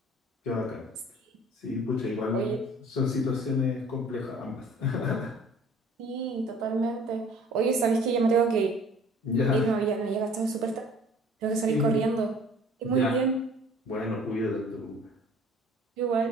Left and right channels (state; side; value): normal; both; correlation 0.50